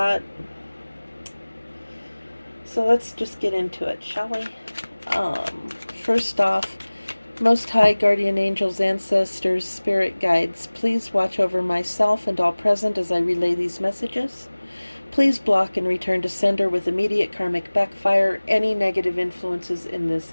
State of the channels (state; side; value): inverted; both; correlation -1.00